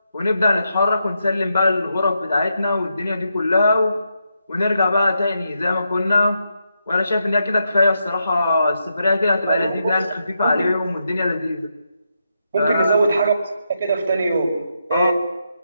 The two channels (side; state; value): both; inverted; correlation -0.83